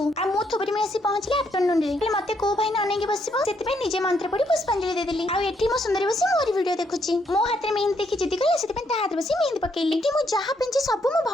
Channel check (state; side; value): normal; both; correlation 0.74